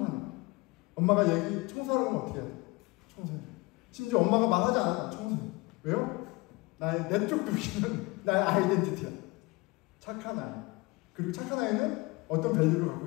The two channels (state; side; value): quieter; right; 23.9 dB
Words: 거야. 엄마가 청소하라고 하면 어떻게 해야 돼? 청소해. 심지어 엄마가 말하지 않아. 청소해. 왜요? 나의 내적 동기는 나의 아이덴티티야. 착한 아이. 그리고 착한 아이는 어떤 밸류를 갖고